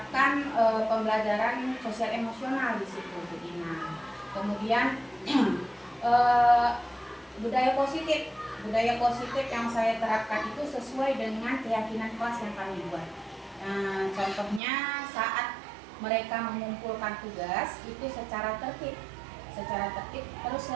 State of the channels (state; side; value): drops out; left; at 14.6 s